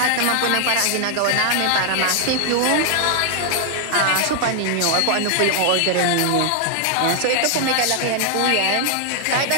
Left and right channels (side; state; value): both; different; correlation 0.00